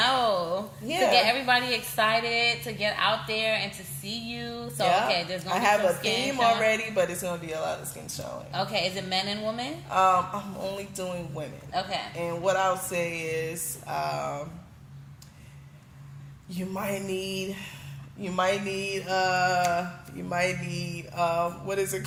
Yeah. To get everybody excited, to get out there and to see you. So okay, there's gonna be I have some a skin theme showing. already, but it's gonna be a lot of skin showing. Okay, is it men and women? I'm only doing women. Okay. And what I'll say is, you might need what is it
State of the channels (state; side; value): identical; both; correlation 1.00